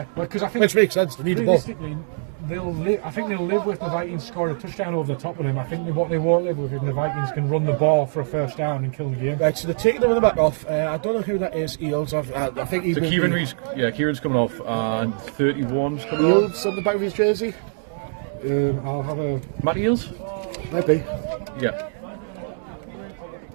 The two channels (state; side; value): silent; left; digital silence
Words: because I think Which makes sense, they need the ball. realistically, I think they'll live with the Vikings scoring a touchdown over the top of them. I think what they won't live with is the Vikings can run the ball for a first down and kill the game. Right, so they're taking the running back off. I don't know who that is. Eels. I think he So will Kieran be- Reed's, Kieran's coming off, and 31's coming on. Eels on the back of his jersey. I'll have a. Matt Eels? Maybe. Yeah.